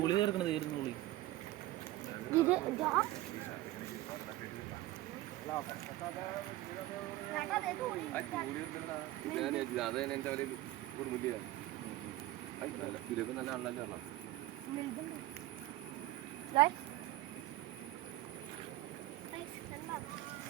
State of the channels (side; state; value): left; quieter; 16.3 dB